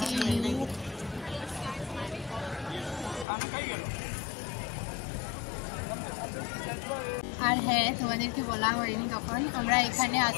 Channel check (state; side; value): drops out; right; at 3.2 s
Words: আর হ্যাঁ, তোমাদেরকে বলা হয়নি তখন আমরা এখানে